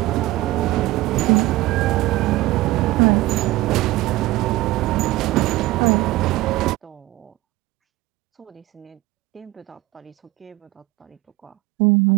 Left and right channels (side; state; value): left; quieter; 18.1 dB